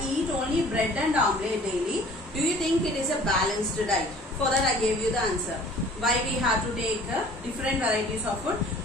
eat only bread and omelette daily. Do you think it is a balanced diet? For that I gave you the answer. Why we have to take different varieties of food.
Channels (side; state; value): both; normal; correlation 0.50